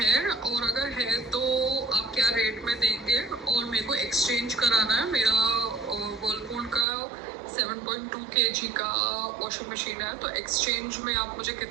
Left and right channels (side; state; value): left; drops out; at 6.9 s